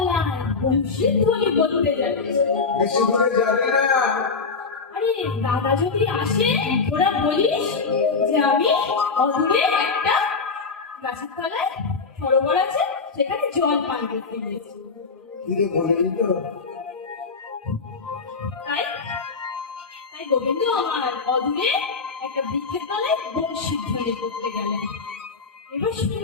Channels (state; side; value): quieter; right; 4.7 dB